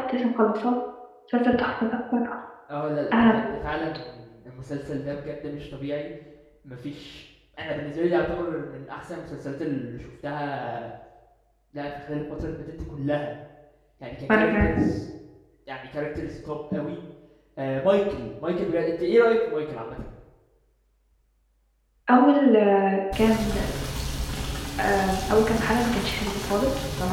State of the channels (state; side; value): identical; both; correlation 1.00